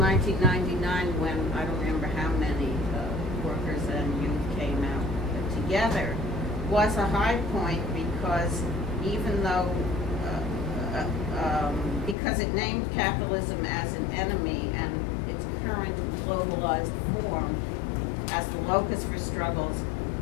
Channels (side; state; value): right; drops out; at 12.2 s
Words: when I don't remember how many workers and youth came out together, was a high point because even though, because it named capitalism as an enemy and its current globalized form as the locus for struggles